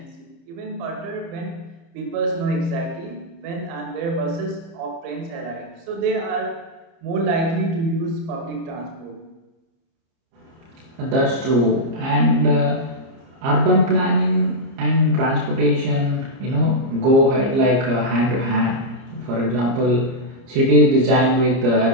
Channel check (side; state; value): left; late; 30 ms